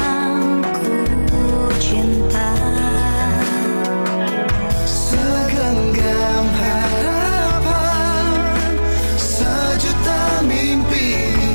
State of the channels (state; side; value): inverted; both; correlation -1.00